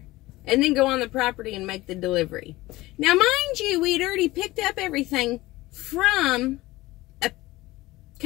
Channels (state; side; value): quieter; right; 18.9 dB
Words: and then go on the property and make the delivery. Now, mind you, we'd already picked up everything from